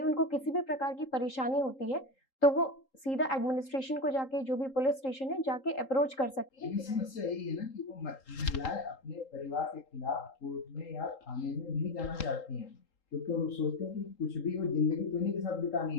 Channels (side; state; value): right; late; 3.8 ms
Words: उनको किसी भी प्रकार की परेशानी होती है तो वो सीधा एडमिनिस्ट्रेशन को जाके, जो भी पुलिस स्टेशन है, जाके अप्रोच कर सकती है। लेकिन समस्या यही है ना कि वो महिलाएं अपने परिवार के खिलाफ कोर्ट में या थाने में नहीं जाना चाहती हैं, क्योंकि वो सोचते हैं कि कुछ भी वो जिंदगी तो इन्हीं के साथ बितानी